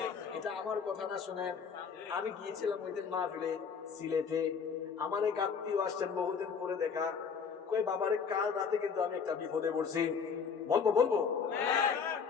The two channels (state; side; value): quieter; right; 6.1 dB